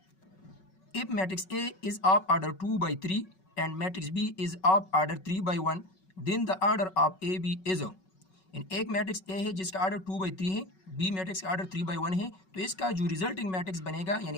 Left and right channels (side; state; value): right; late; 5.3 ms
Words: If matrix A is of order 2/3 and matrix B is of order 3/1, then the order of AB is। इन एक मैट्रिक्स A है जिसका ऑर्डर 2/3 है, B मैट्रिक्स का ऑर्डर 3/1 है, तो इसका जो रिजल्टिंग मैट्रिक्स बनेगा